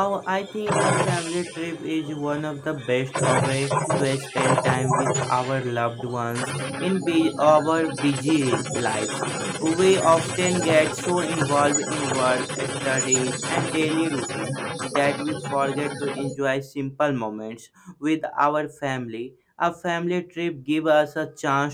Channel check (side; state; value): both; identical; correlation 1.00